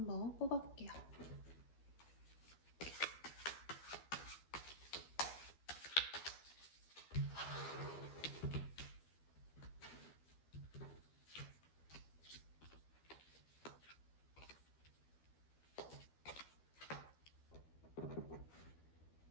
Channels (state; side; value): late; right; 12 ms